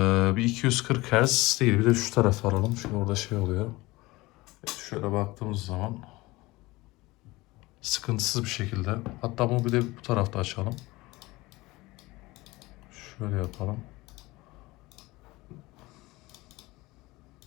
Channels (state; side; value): quieter; right; 20.9 dB